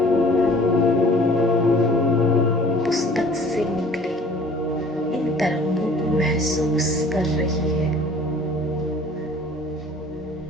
पुस्तक से निकले इन तरंगों को महसूस कर रही है।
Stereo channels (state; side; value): normal; both; correlation 0.50